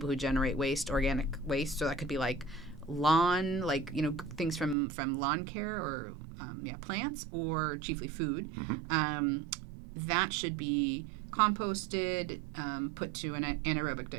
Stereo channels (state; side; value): drops out; left; at 4.8 s